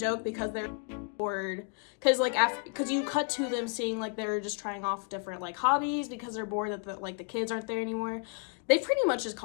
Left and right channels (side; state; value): right; quieter; 37.9 dB